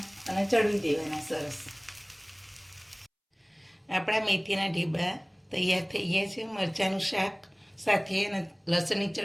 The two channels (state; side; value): identical; both; correlation 1.00